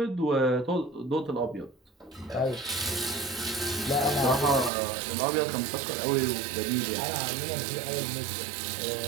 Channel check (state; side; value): drops out; left; at 4.7 s